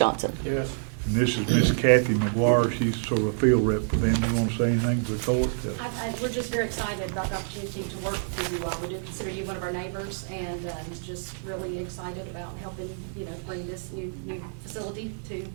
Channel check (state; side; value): silent; left; digital silence